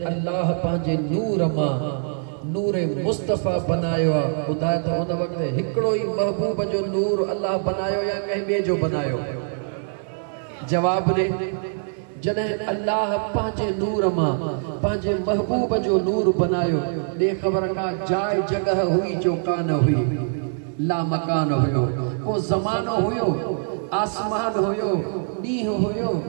अल्लाह पंहिंजे नूर मां नूर मुस्तफ़ा बनायो आहे। ॿुधाए त उन वक़्तु हिकिड़ो ई महबूब जो नूर अल्लाह बनायो या कंहिं ॿिए जो बनायो? जवाब ॾे। जॾहिं अल्लाह पंहिंजे नूर मां पंहिंजे महबूब जो नूर बनायो, ॾे ख़बर का जाइ जगह हुई जो कान हुई, ला मकान हुयो, को ज़मानो हुयो, आसमान हुयो, ॾींहुं हुयो,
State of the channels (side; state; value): left; silent; digital silence